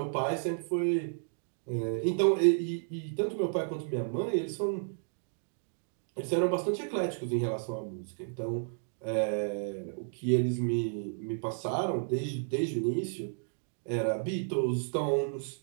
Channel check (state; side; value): silent; left; digital silence